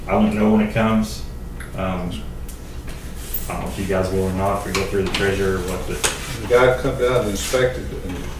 I won't know when it comes. I don't know if you guys will or not, if we go through the treasurer or what, but The guy come down and inspected and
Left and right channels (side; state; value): both; identical; correlation 1.00